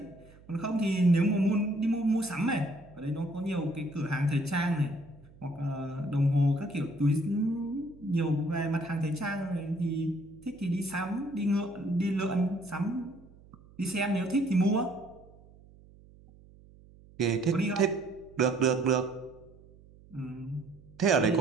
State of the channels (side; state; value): right; noise; hum, 24 dB below the sound